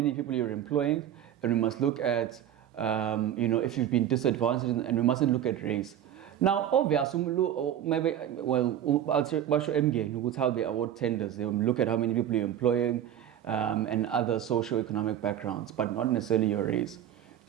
people you're employing, and we must look at, if you've been disadvantaged, and we mustn't look at race. Now, obviously, maybe, I'll show MG how they award tenders. They will look at how many people you're employing and other socio-economic backgrounds, but not necessarily your race.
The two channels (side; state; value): left; quieter; 10.7 dB